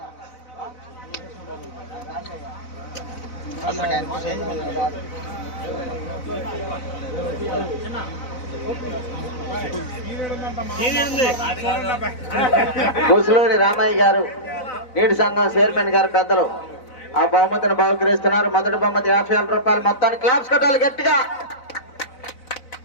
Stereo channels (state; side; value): late; right; 4.0 ms